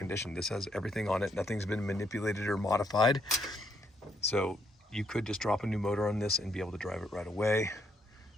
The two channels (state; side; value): normal; both; correlation 0.74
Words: This has everything on it. Nothing's been manipulated or modified. So you could just drop a new motor on this and be able to drive it right away.